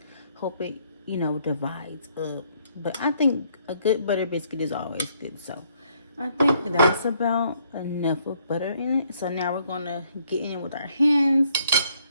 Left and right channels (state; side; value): inverted; both; correlation -0.68